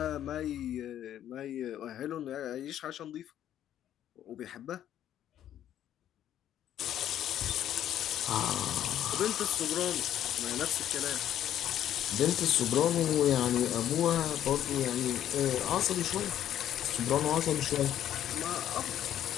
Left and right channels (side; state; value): right; quieter; 11.2 dB